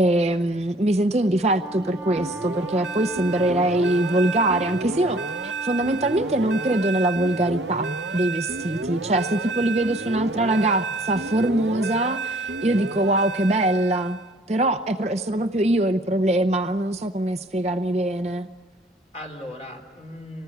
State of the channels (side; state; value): both; normal; correlation 0.56